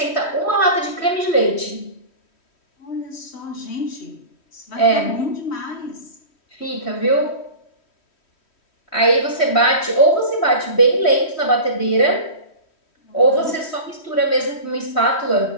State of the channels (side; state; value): right; late; 3.1 ms